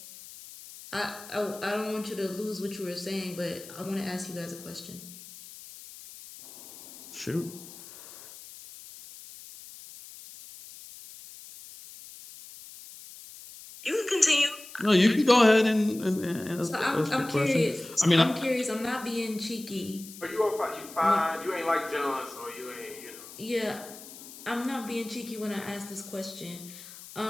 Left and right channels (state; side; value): noise; left; hiss, 16 dB below the sound